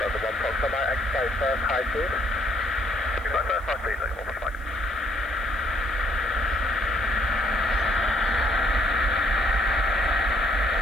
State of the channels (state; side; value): noise; left; hiss, 29 dB below the sound